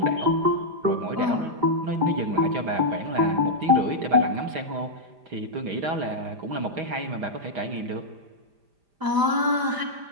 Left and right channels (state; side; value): late; left; 5.0 ms